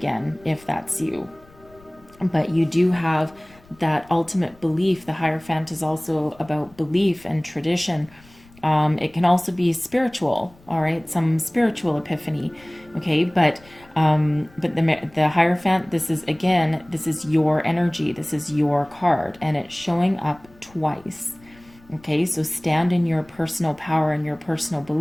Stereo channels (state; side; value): noise; left; rumble, 27 dB below the sound